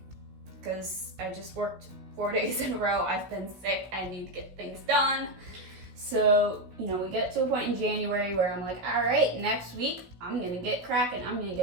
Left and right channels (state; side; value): late; left; 16 ms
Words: because I just worked 4 days in a row. I've been sick, I need to get things done. So, we get to a point in January where I'm like, all right, next week I'm gonna get cracking, I'm gonna